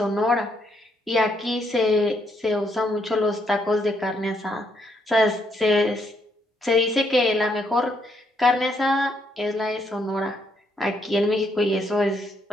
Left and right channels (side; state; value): both; normal; correlation 0.74